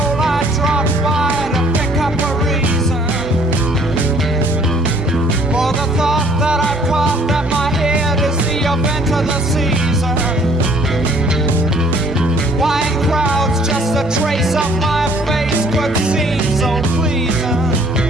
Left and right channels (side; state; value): both; normal; correlation 0.59